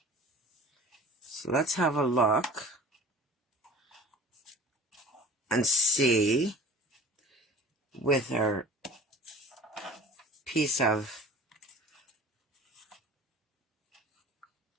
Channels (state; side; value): normal; both; correlation 0.43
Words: So let's have a look and see with our piece of